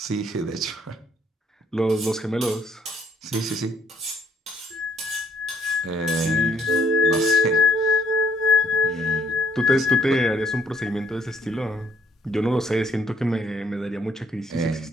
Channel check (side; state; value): both; normal; correlation 0.65